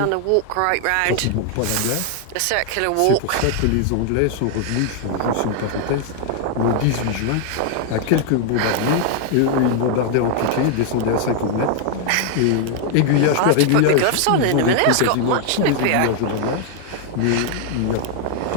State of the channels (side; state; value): both; different; correlation 0.00